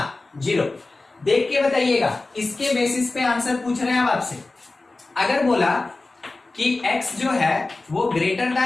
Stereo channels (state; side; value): quieter; right; 3.3 dB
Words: 0। देख के बताइएगा, इसके बेसिस पे आंसर पूछ रहे हैं अब आपसे। अगर बोला कि x जो है वो ग्रेटर